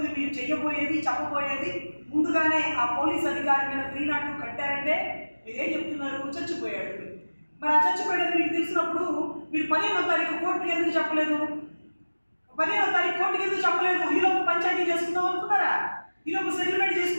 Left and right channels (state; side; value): inverted; both; correlation -1.00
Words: మీరు చెప్పబోయేది ముందుగానే ఆ పోలీస్ అధికారి మీద 302 కట్టారంటే మీరేం చెప్తున్నారు, చచ్చిపోయాడు. మరి ఆ చచ్చిపోయేది మీకు తెలిసినప్పుడు మీరు 15వ తారీఖు కోర్టుకి ఎందుకు చెప్పలేదు? 15వ తారీఖు కోర్టుకి ఎందుకు చెప్పలేదు? ఈలోపు పంచాయతీ చేసుకుందాం అనుకున్నారా? ఈలోపు సెటిల్మెంట్